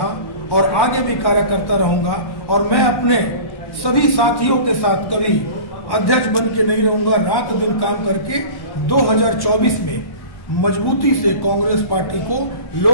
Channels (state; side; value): late; right; 1.1 ms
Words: और आगे भी कार्यकर्ता रहूंगा। और मैं अपने सभी साथियों के साथ कभी अध्यक्ष बन के नहीं रहूंगा। रात दिन काम करके 2024 में मजबूती से कांग्रेस पार्टी को